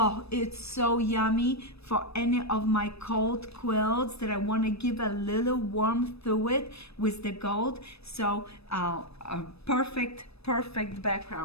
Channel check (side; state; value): right; late; 0.78 ms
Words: it's so yummy for any of my cold quilts that I want to give a little warmth to it with the gold. So a perfect